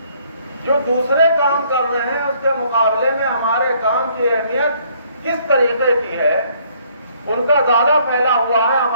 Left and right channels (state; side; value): inverted; both; correlation -0.64